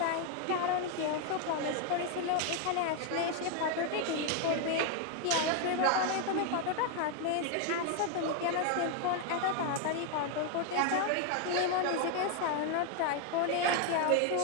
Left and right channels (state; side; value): different; both; correlation 0.01